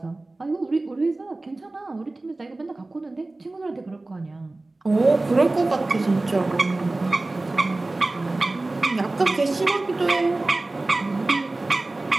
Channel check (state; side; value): quieter; left; 3.0 dB